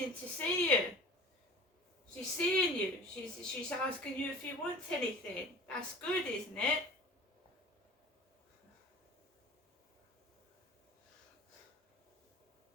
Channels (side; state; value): both; normal; correlation 0.41